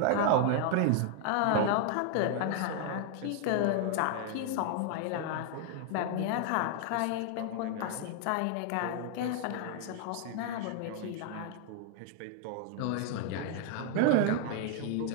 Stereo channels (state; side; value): different; both; correlation 0.00